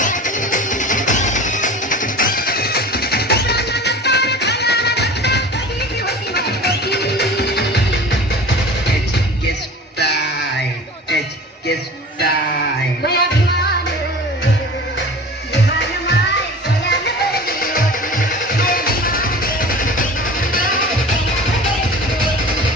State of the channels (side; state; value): both; normal; correlation 0.39